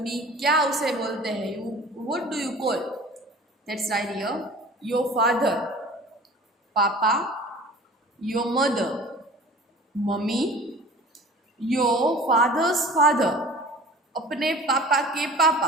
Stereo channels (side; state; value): both; normal; correlation 0.43